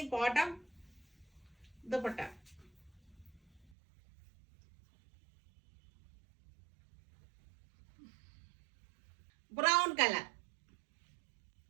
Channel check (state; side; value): drops out; left; at 3.7 s